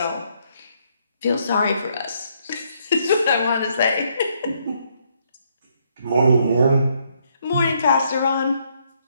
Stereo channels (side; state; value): both; inverted; correlation -0.72